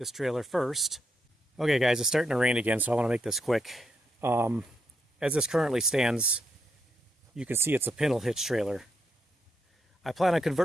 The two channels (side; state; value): both; normal; correlation 0.81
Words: trailer first. Okay guys, it's starting to rain again, so I want to make this quick. As this currently stands, you can see it's a Pintle hitch trailer. I plan on